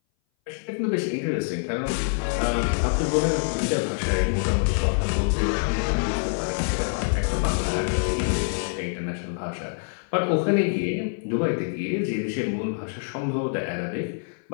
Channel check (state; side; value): silent; right; 58 dB below the other